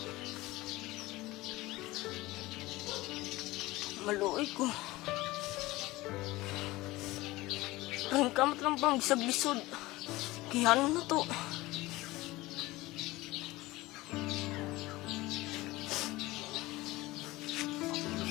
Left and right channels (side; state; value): right; quieter; 19.5 dB